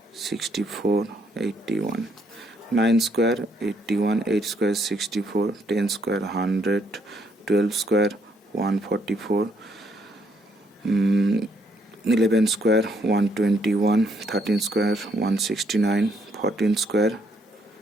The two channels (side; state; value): both; normal; correlation 0.71